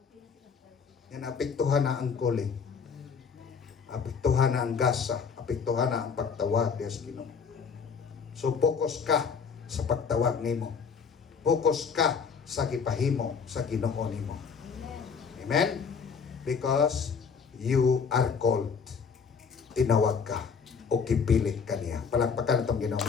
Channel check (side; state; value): right; quieter; 6.0 dB